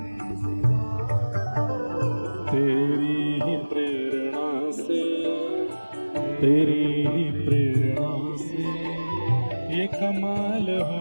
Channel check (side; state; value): both; inverted; correlation -1.00